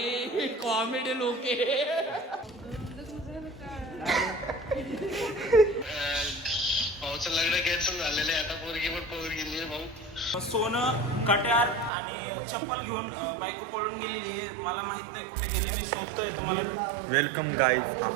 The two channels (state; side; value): drops out; left; at 11.9 s